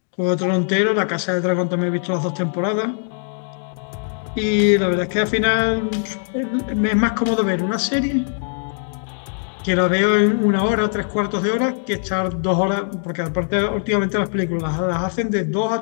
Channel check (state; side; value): silent; right; 61 dB below the other